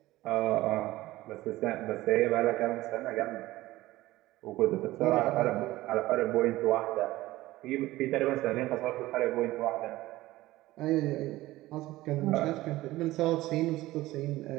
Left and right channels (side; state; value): left; quieter; 17.3 dB